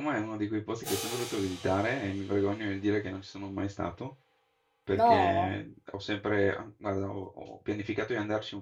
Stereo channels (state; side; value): identical; both; correlation 1.00